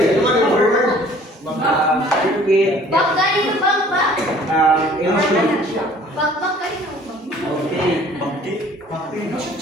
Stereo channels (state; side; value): normal; both; correlation 0.53